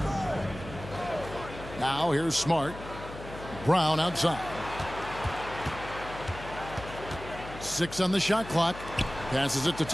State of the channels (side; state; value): left; noise; hum, 13 dB below the sound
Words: Now here's Smart. Brown outside. 6 on the shot clock. Passes it to